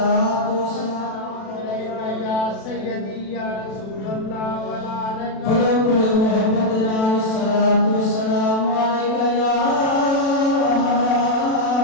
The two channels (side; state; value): right; late; 36 ms